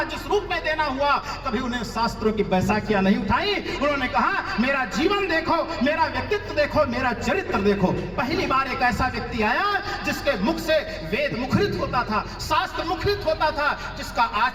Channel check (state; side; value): identical; both; correlation 1.00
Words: जिस रूप में देना हुआ, कभी उन्हें शास्त्रों की बैसाखियां नहीं उठाई। उन्होंने कहा मेरा जीवन देखो, मेरा व्यक्तित्व देखो, मेरा चरित्र देखो। पहली बार एक ऐसा व्यक्ति आया जिसके मुख से वेद मुखरित होता था, शास्त्र मुखरित होता था, जिसका